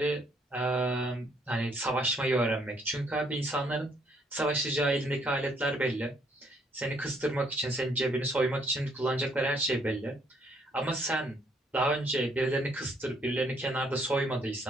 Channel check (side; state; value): both; normal; correlation 0.68